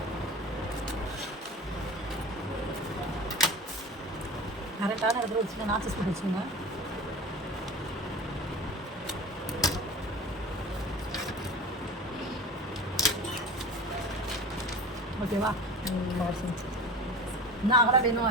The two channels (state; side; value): normal; both; correlation 0.35